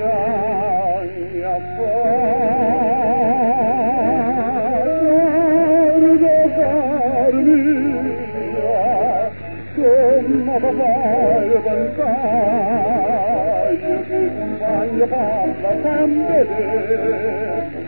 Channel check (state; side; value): inverted; both; correlation -1.00